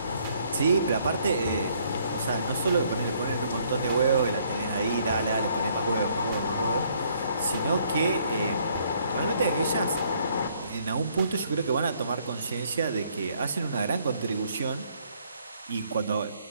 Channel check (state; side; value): inverted; both; correlation -0.66